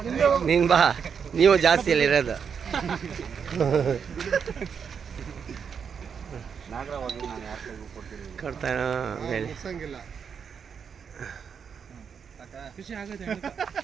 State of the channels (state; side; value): quieter; left; 6.8 dB